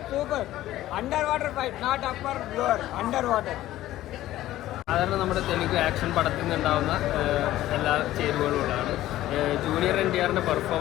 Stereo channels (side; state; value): right; quieter; 14.6 dB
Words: super under water fight not upper lower under water. സാധാരണ നമ്മുടെ തെലുങ്ക് ആക്ഷൻ പടത്തിൽ നിന്നുണ്ടാവുന്ന എല്ലാ ചേരുവകളുമാണ്. ജൂനിയർ NTRന്റെ